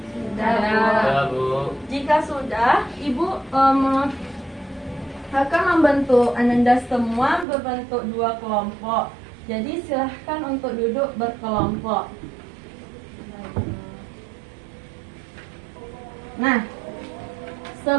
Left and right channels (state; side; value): drops out; left; at 7.5 s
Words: Sudah, Bu. Jika sudah, Ibu akan membentuk Anda semua berbentuk 2 kelompok. Jadi silahkan untuk duduk berkelompok. Nah,